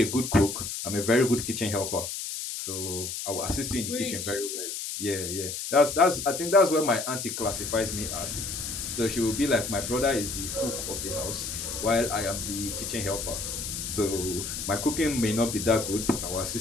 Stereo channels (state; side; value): noise; left; hiss, 5 dB below the sound